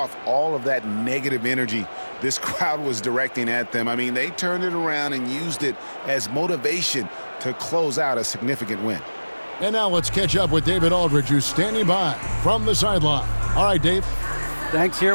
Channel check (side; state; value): both; inverted; correlation -1.00